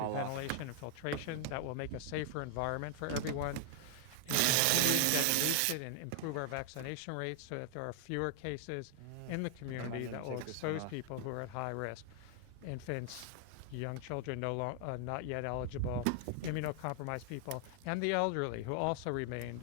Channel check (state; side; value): different; both; correlation 0.00